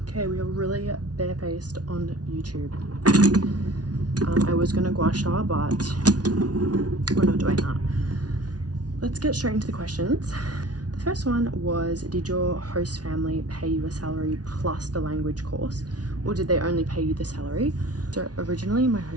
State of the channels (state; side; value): late; left; 0.69 ms